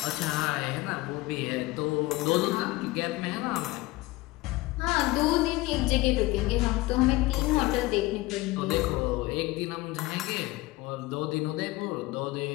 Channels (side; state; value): right; quieter; 19.8 dB